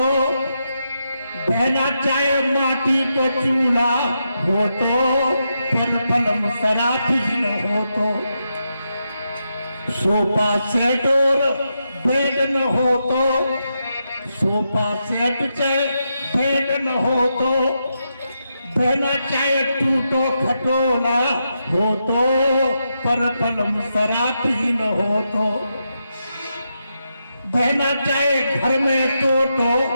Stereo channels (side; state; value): both; inverted; correlation -0.84